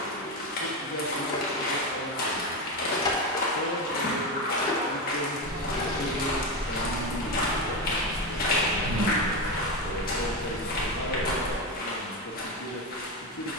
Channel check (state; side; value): normal; both; correlation 0.15